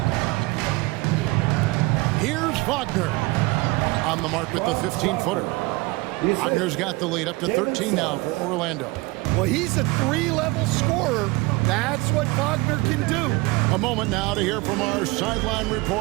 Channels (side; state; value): left; quieter; 23.4 dB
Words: Here's Wagner on the mark with the 15-footer. Wagner's got the lead up to 13 now for Orlando. Well, he's a 3-level scorer. That's what Wagner can do. A moment now to hear from our sideline